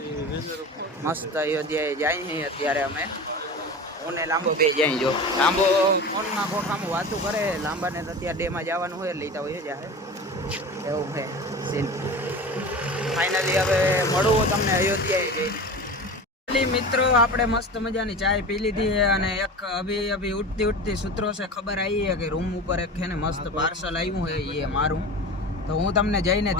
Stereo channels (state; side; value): normal; both; correlation 0.32